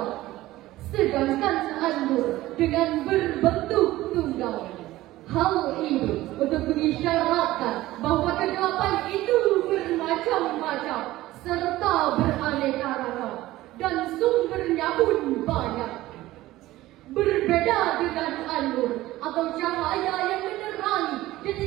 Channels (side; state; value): left; quieter; 16.6 dB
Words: sedangkan An-Nur dengan berbentuk tunggal. Hal ini untuk mengisyaratkan bahwa kegelapan itu bermacam-macam serta beraneka ragam dan sumbernya pun banyak. Berbeda dengan An-Nur atau cahaya yang menerangi dan